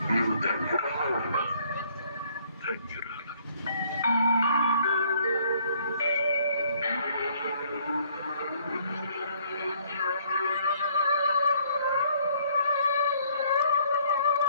నీవు ధన్యురాలు ఉన్నా, ధన్యురాలు.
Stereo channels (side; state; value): both; inverted; correlation -0.63